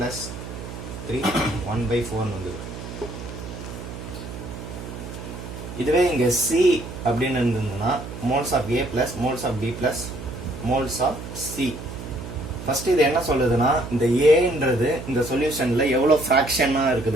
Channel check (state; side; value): noise; right; hum, 10 dB below the sound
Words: + 3 1/4 வந்தது. இதுவே இங்கே C அப்படின்னு இருந்ததுன்னா moles of A plus moles of B plus moles of C. First இது என்ன சொல்லுதுன்னா இந்த ஏன்றது இந்த சொல்யூஷன்ல எவ்வளோ ஃப்ராக்ஷனாக